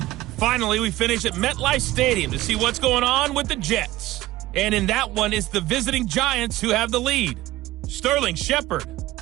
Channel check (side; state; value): left; quieter; 16.9 dB